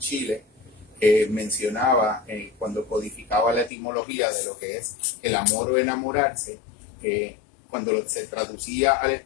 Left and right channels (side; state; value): right; drops out; at 3.7 s